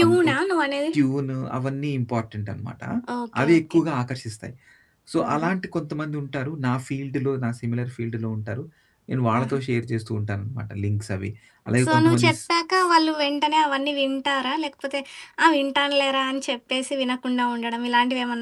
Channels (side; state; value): both; identical; correlation 1.00